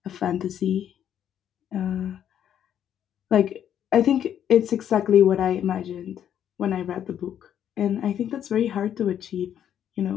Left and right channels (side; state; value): right; quieter; 9.8 dB